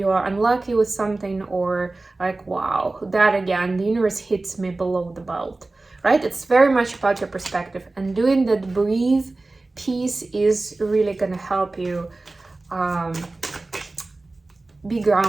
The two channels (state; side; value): quieter; left; 3.2 dB